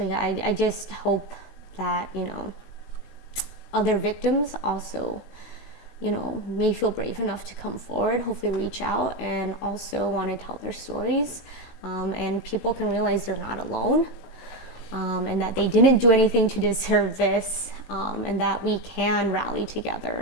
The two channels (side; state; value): right; late; 16 ms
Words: I just hope that, other victims also, may feel brave enough to come forward, hopefully reach out, and also want to tell their stories. And people can realize they're not alone, and that they didn't do anything to deserve this, and that we can rally